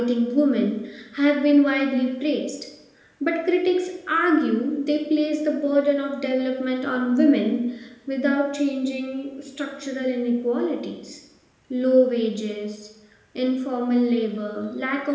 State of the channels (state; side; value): identical; both; correlation 1.00